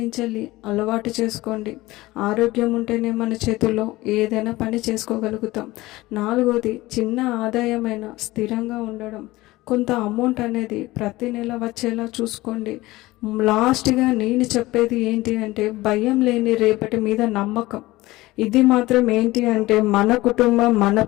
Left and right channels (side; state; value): right; quieter; 19.0 dB